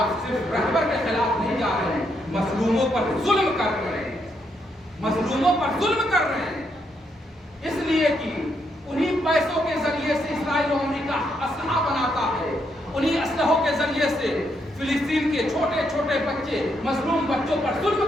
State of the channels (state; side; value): normal; both; correlation 0.77